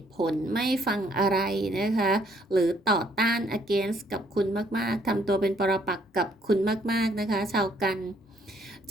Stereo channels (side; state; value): both; normal; correlation 0.66